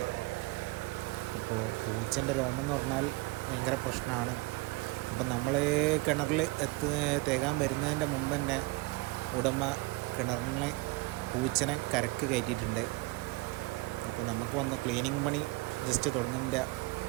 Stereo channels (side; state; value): left; quieter; 22.8 dB